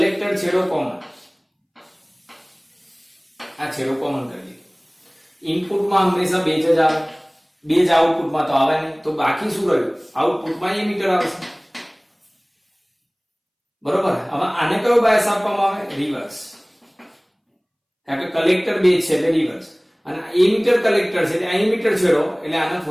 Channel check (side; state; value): both; identical; correlation 1.00